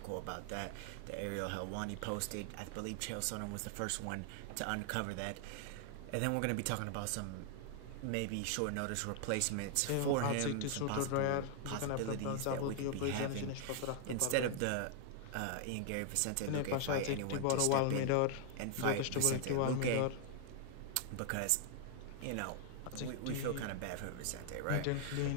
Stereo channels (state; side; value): different; both; correlation 0.00